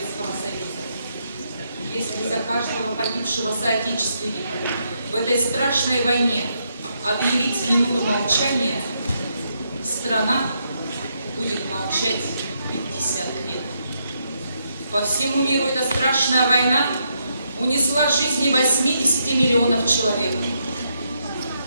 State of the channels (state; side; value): inverted; both; correlation -0.79